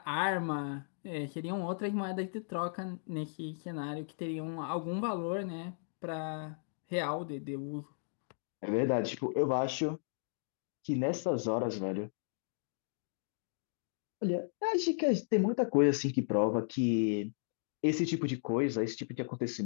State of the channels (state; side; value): silent; right; digital silence